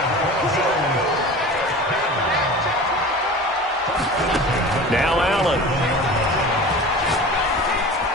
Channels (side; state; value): both; normal; correlation 0.36